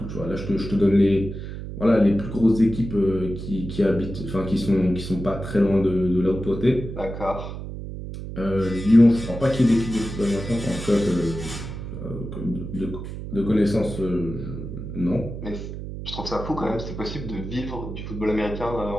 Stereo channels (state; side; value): noise; right; hum, 8 dB below the sound